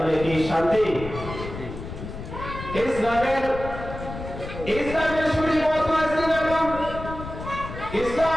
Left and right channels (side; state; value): left; noise; rumble, 10 dB below the sound